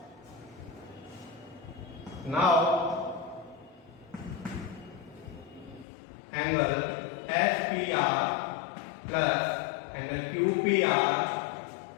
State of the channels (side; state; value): right; drops out; at 5.9 s